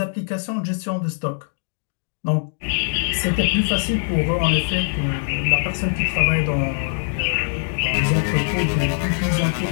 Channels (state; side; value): silent; right; digital silence